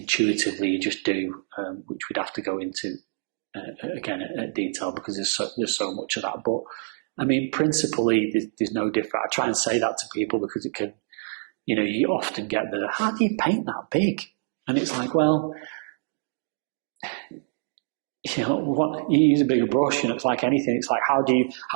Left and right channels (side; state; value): left; silent; digital silence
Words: you just do, which we'd have to go into again at detail, because there's so much of that. But I mean, principally, there's no different. I try and say that to people because it can, you often get how do you paint that big? And it's like, well, what you use a bigger brush, it's like anything. It's like, how do